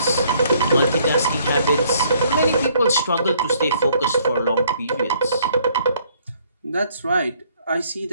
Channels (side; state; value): both; inverted; correlation -0.63